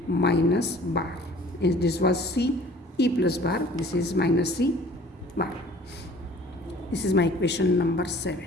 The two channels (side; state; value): both; normal; correlation 0.50